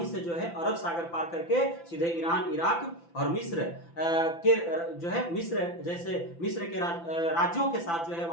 से जो है अरब सागर पार करके सीधे ईरान, इराक और मिस्र के जो है मिस्र के राज्यों के साथ जो है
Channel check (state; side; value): late; right; 5.9 ms